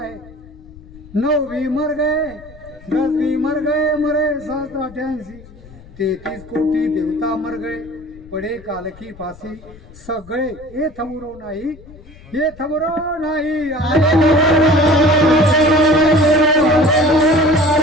9 मर गए, 10 मर गए, मरे 788. 33 कोटी देवता मर गए, पडे काल की फासी. सगळे हे थबुरो नाही, हे थबुरो नाही.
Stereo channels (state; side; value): noise; left; rumble, 21 dB below the sound